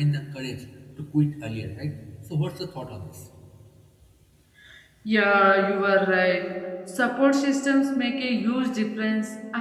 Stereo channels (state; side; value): identical; both; correlation 1.00